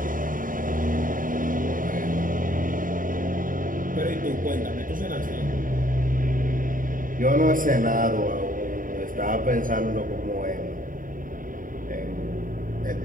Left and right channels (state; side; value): late; left; 0.40 ms